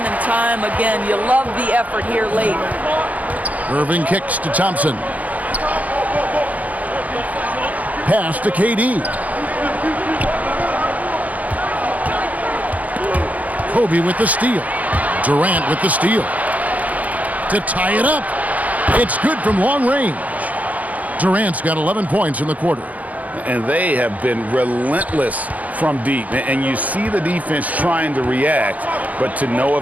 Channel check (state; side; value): late; left; 0.074 ms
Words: and time again. You love the effort here late. Irving kicks to Thompson. Pass to KD. Kobe with the steal. Durant with the steal. To tie it up. It's good from long range. Durant's got 11 points in the quarter. And they have been relentless from deep. And you see the defense trying to react, but to no